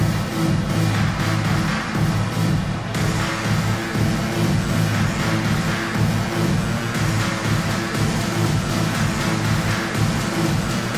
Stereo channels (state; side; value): identical; both; correlation 1.00